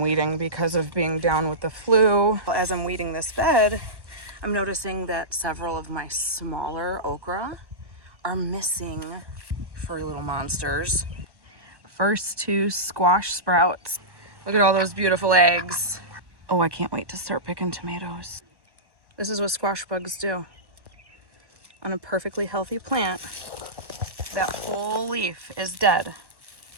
because of being down with the flu. As I'm weeding this bed, I'm noticing that several of my smaller okra are missing furry little monsters. First 2 squash sprouts. Look at all those beautiful eggs. Oh, I can't wait to start picking tomatoes. This is what squash bugs do. On a perfectly healthy plant, that whole leaf is dead.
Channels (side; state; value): left; late; 1.1 ms